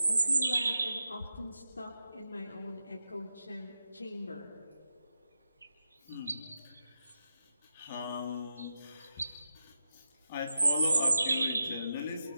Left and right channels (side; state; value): both; inverted; correlation -0.88